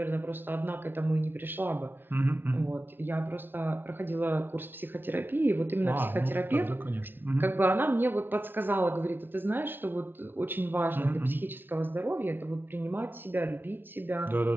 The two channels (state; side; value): late; left; 0.10 ms